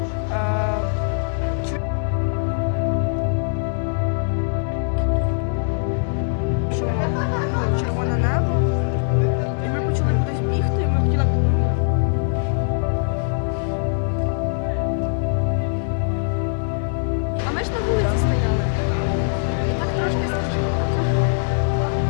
Червоне небо. І ми почали кудись бігти, і ми хотіли. А ми ж на вулиці стояли. І так трошки страшно.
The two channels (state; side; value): silent; right; digital silence